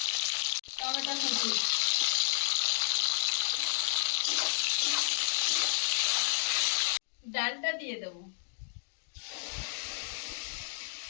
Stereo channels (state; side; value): silent; right; digital silence